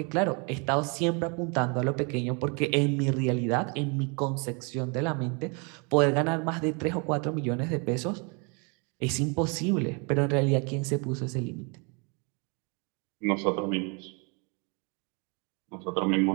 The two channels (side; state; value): left; quieter; 33.4 dB